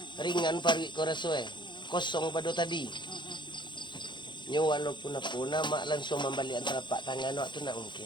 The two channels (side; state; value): right; late; 0.23 ms